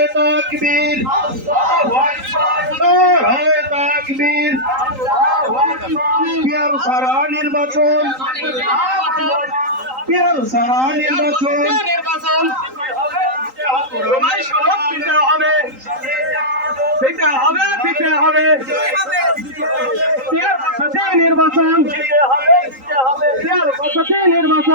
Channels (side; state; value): left; late; 3.8 ms